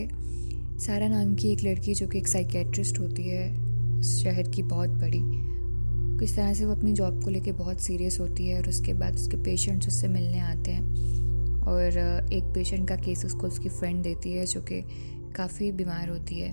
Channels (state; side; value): inverted; both; correlation -1.00